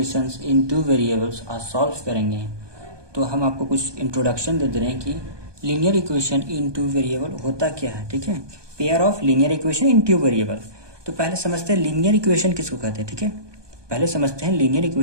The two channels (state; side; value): late; left; 1.2 ms